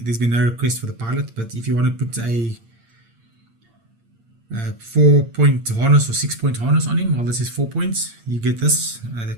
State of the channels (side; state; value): left; late; 8.7 ms